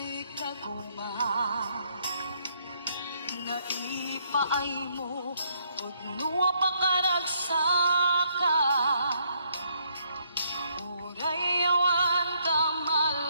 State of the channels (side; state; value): both; inverted; correlation -0.71